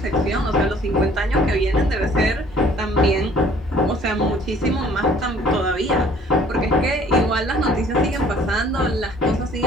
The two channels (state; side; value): normal; both; correlation 0.56